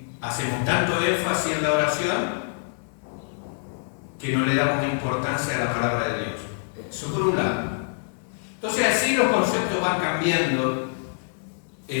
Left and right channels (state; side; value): silent; right; digital silence